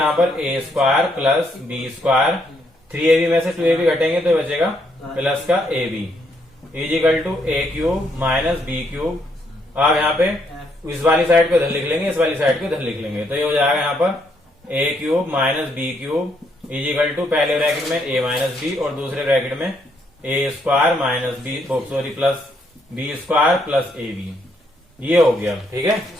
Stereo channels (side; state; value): both; normal; correlation 0.73